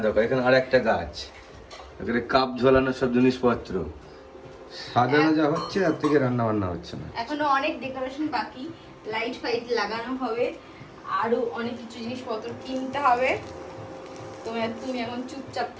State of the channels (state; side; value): identical; both; correlation 1.00